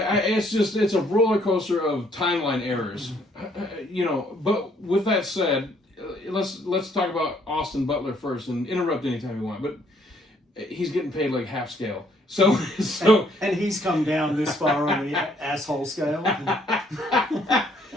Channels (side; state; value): both; normal; correlation 0.66